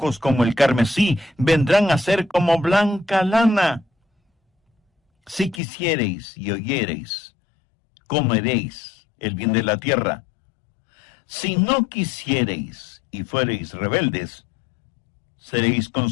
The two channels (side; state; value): right; drops out; at 5.6 s